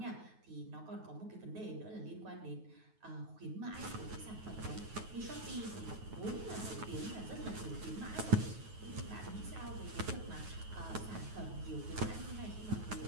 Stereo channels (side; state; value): left; late; 9.3 ms